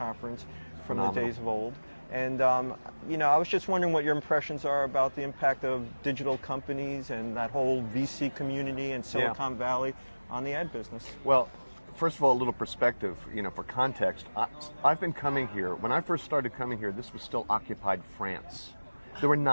from the Phenomenal. days of old. And, I was just wondering what your impressions are about the impact of digital companies and that whole VC community in Silicon Valley on the ad business. Well, first of all, a little perspective, for context. I've been coming here. When I first started coming here, this was still occupied France. There were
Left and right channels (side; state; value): both; inverted; correlation -1.00